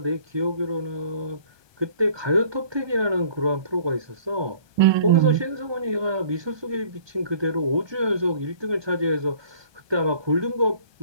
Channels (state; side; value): late; left; 1.2 ms